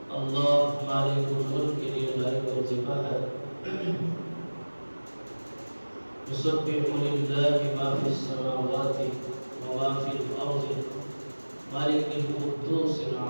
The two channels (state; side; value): inverted; both; correlation -1.00